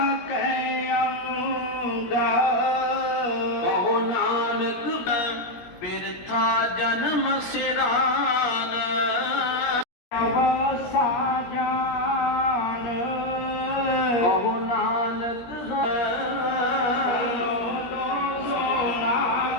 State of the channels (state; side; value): late; right; 17 ms